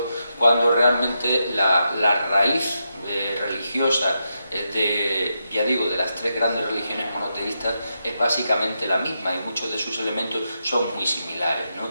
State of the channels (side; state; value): both; inverted; correlation -0.85